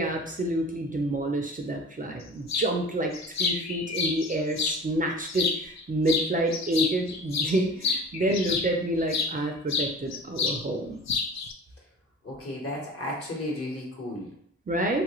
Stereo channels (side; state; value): both; normal; correlation 0.39